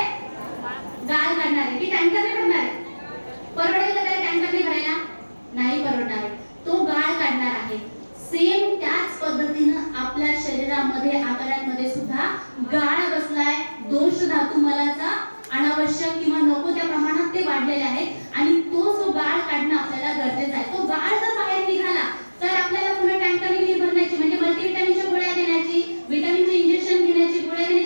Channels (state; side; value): inverted; both; correlation -1.00